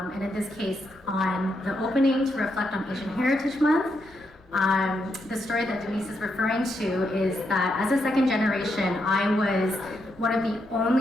in this case, on the opening to reflect on Asian Heritage Month, the story that Denise is referring to is that as a second generation, I was one of the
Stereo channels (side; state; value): both; normal; correlation 0.81